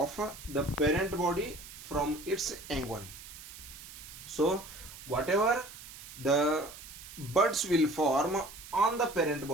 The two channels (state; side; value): noise; right; hiss, 15 dB below the sound